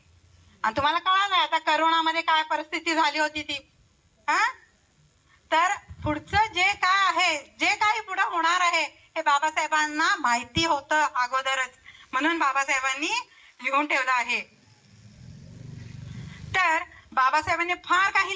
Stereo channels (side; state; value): both; identical; correlation 1.00